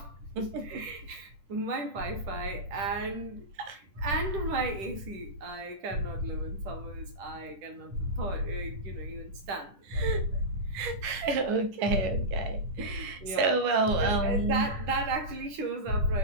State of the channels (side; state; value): left; late; 10 ms